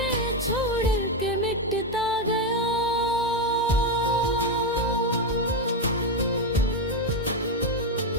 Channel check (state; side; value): normal; both; correlation 0.08